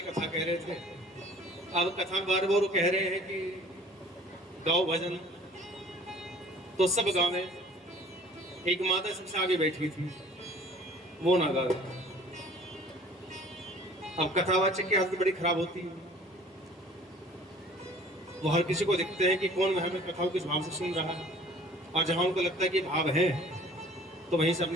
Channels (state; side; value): normal; both; correlation 0.50